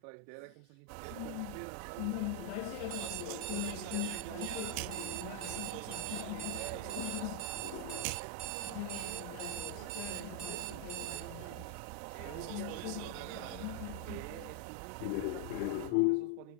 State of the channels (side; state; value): both; different; correlation 0.00